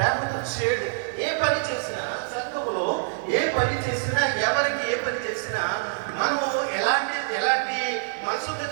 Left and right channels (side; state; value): left; silent; 55 dB below the other